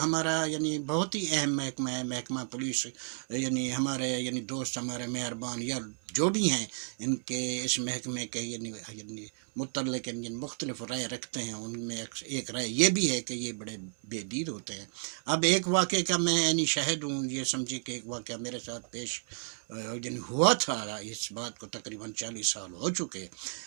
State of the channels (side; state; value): left; silent; 56 dB below the other